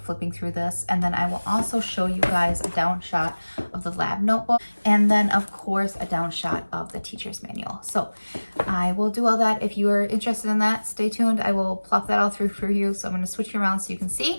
through this, and then I will also show you guys a down shot of the lab notebook, and then of course a down shot of the teacher's manual. So I will do all that. If you are interested in that, stay tuned. I will plop that all through for you. So I'm going to switch you around so you can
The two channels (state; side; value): inverted; both; correlation -1.00